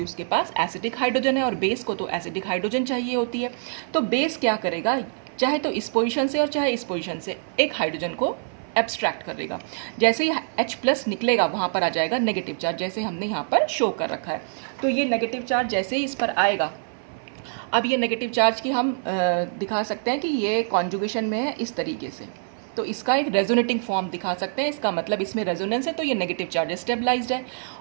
उसके पास एसिडिक हाइड्रोजन है और बेस को तो एसिडिक हाइड्रोजन चाहिए होती है। तो बेस क्या करेगा, चाहे तो इस पोजीशन से और चाहे इस पोजीशन से एक हाइड्रोजन को एब्स्ट्रैक्ट कर देगा। जैसे ही H+ निकलेगा वहाँ पर आ जाएगा नेगेटिव चार्ज, जैसे हमने यहाँ पर शो कर रखा है। तो ये नेगेटिव चार्ज जैसे ही इस पर आएगा, अब ये नेगेटिव चार्ज की हम दिखा सकते हैं कि ये कॉन्जुगेशन में है इस तरीके से, तो इसका एक रेजोनेटिंग फॉर्म दिखा सकते हैं। इसका मतलब इसमें रेजोनेंस है, तो ये नेगेटिव चार्ज स्टेबलाइज्ड है।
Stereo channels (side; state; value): left; silent; 56 dB below the other